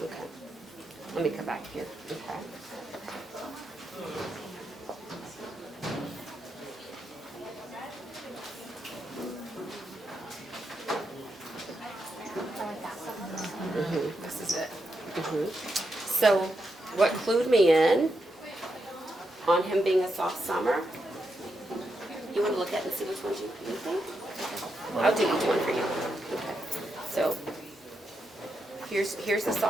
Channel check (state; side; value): normal; both; correlation 0.84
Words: Okay. Let me come back here. Okay. This is it. So what clued me in on him being a soft summer, you want to look at and see which ones you think? Okay. here's the